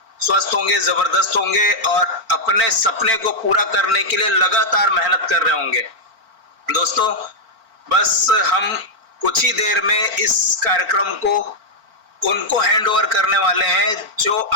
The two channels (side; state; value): left; late; 4.4 ms